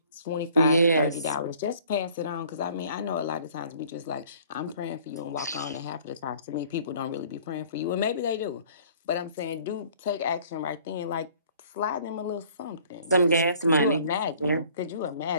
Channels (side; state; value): both; inverted; correlation -0.54